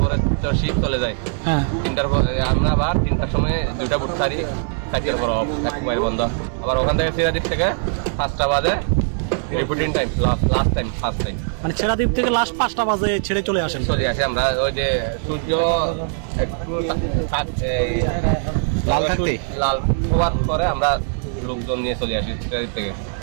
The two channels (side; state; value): left; silent; digital silence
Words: পরে তো শিপ চলে যায়, হ্যাঁ 3টার পরে আমরা আবার 3টার সময় 2টা বুট ছাড়ি, 4টার পর অফ, এক মাইল বন্ধ। আবার ওখান থেকে সিরাদ্বীপ থেকে 5টা বাজে reporting time, last time, first time. মানে ছেড়া দ্বীপ থেকে লাস্ট 5টা বাজে ছেড়ে চলে আসেন? চলে আসে আমরা ওই যে সূর্য একটু লাল হওয়ার পরে আমরা লোকজন নিয়ে চলে আসি সিরাদ্বীপ থেকে।